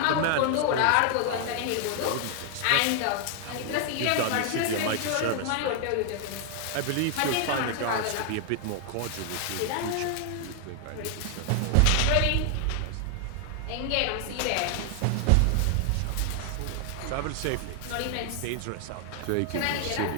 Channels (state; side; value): different; both; correlation 0.00